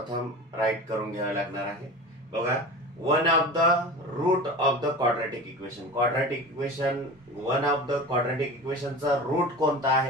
राईट करून घ्यावी लागणार आहे. बघा, one of the root of the quadratic equation. Quadratic equation, one of the quadratic इक्वेशनचा रूट कोणता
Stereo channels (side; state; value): both; normal; correlation 0.33